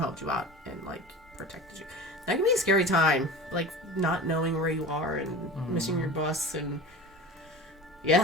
helped you out and like protected you. That can be a scary time, like not knowing where you are and missing your bus, and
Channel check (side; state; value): both; normal; correlation 0.34